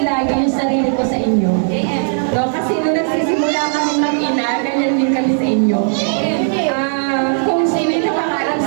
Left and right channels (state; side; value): silent; left; digital silence